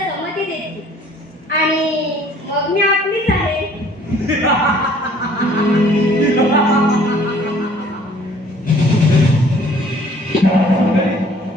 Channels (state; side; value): normal; both; correlation 0.56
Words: देतील. आणि मग मी आपलीच आहे.